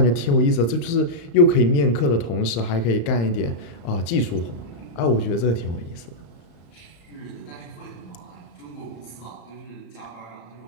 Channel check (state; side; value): late; right; 35 ms